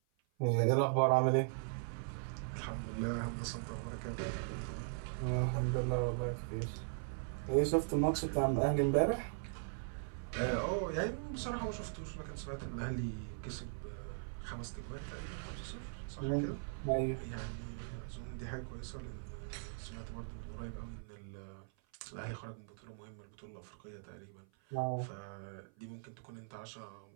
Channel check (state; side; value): silent; left; 51 dB below the other